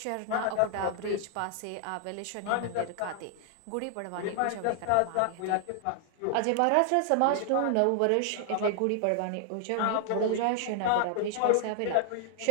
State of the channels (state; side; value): different; both; correlation 0.00